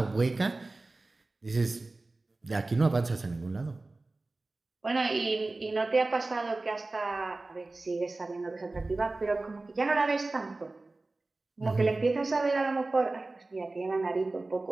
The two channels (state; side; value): quieter; left; 3.2 dB